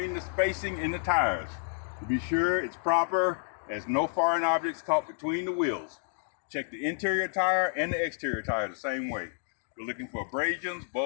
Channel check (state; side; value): silent; right; digital silence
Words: the spacing in the tires. To be sure it's proper, there's no foreign objects caught between the wheels. Check the interior tire and the exterior tire the same way. We're looking for abrasions,